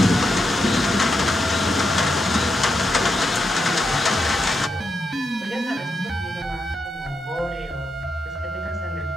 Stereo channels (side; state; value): both; normal; correlation 0.84